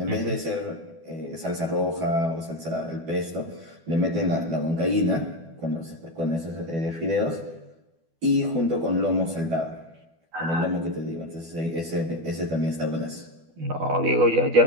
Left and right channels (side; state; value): left; late; 12 ms